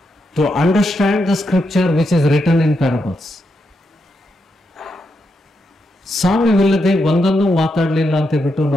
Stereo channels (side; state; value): both; normal; correlation 0.83